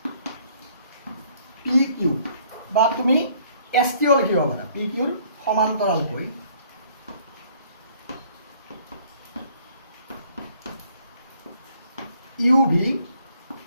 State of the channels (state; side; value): inverted; both; correlation -0.61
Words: পি কিউ বা তুমি এছ টিও লিখিব পাৰা পি কিউৰ সমান্তৰালকৈ ইউ ভি